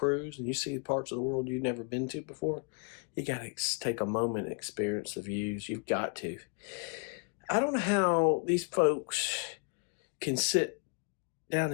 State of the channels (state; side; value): quieter; right; 38.7 dB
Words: and you see parts of the world you've never been to before, you got to take a moment and experience the views. You've got to. I don't know how these folks can sit down